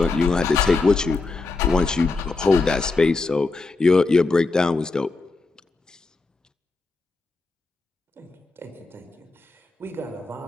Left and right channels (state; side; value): quieter; right; 3.7 dB